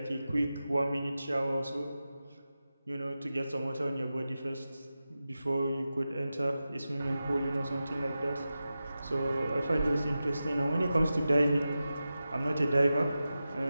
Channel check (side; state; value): both; inverted; correlation -0.93